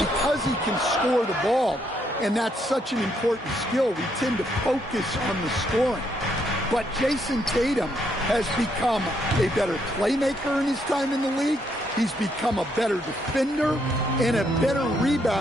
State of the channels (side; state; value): both; normal; correlation 0.74